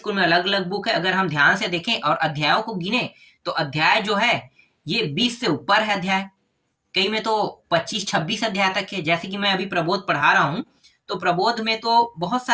में अलग अलग बुक है। अगर हम ध्यान से देखें और अध्यायों को गिने तो अध्याय जो है ये 20 से ऊपर है अध्याय, कई में तो 25-26 अध्याय तक है। जैसे कि मैं अभी प्रबोध पढ़ा रहा हूँ तो प्रबोध में तो बहुत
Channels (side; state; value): both; identical; correlation 1.00